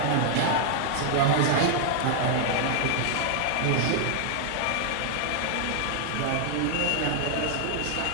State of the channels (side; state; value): both; different; correlation 0.00